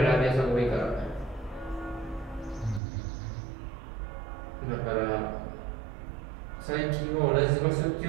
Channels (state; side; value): drops out; left; at 2.8 s